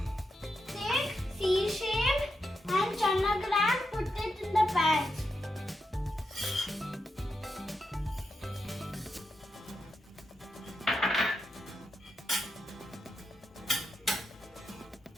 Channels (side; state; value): both; normal; correlation 0.85